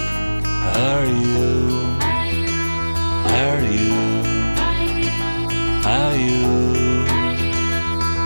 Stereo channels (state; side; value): inverted; both; correlation -1.00